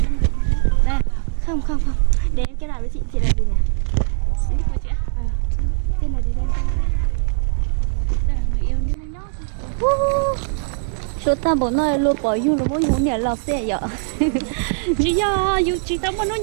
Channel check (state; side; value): silent; left; digital silence